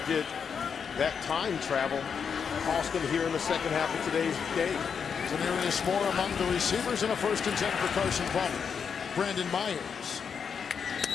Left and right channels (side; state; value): right; quieter; 6.6 dB